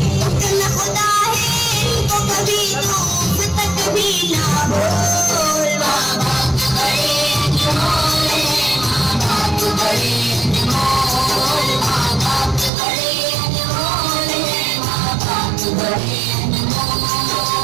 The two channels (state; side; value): drops out; left; at 12.7 s